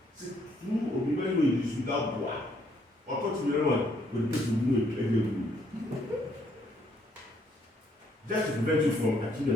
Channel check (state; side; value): normal; both; correlation 0.69